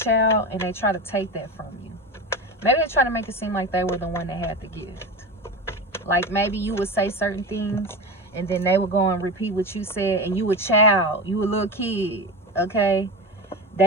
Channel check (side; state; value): both; normal; correlation 0.25